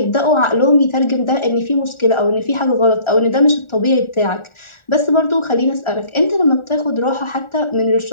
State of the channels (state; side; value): late; right; 1.4 ms